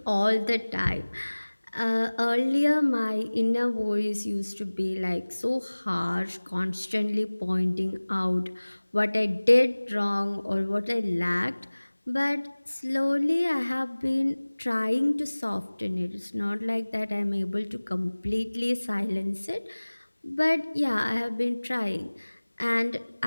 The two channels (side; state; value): both; inverted; correlation -1.00